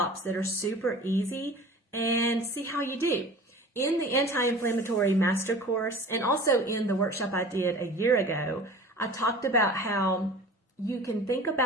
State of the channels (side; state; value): both; normal; correlation 0.41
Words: that are super easy and see how you do. In the anti-inflammatory master course, and also in the workshop I did a year ago, I talked about how you can think